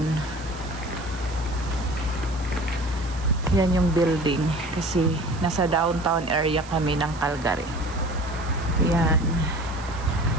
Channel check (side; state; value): right; noise; hiss, 19 dB below the sound